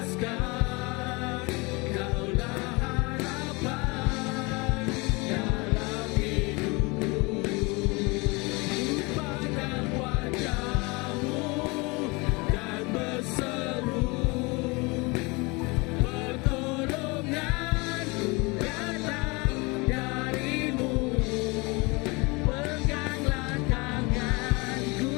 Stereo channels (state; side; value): quieter; right; 26.6 dB